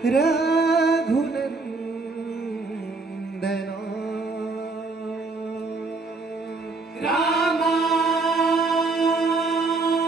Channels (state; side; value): quieter; left; 3.8 dB